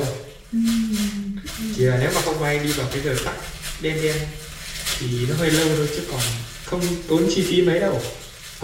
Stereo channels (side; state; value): both; identical; correlation 1.00